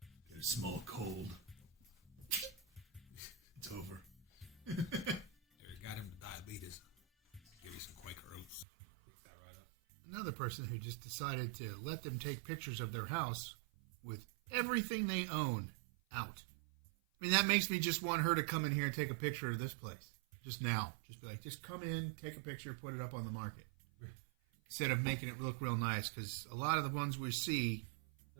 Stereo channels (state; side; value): drops out; left; at 8.7 s